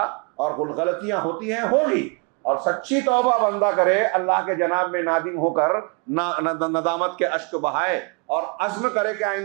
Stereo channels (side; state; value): left; quieter; 34.7 dB